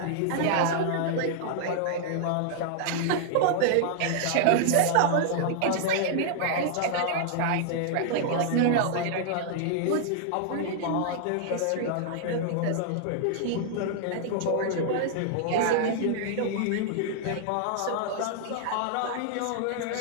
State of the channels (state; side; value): different; both; correlation -0.01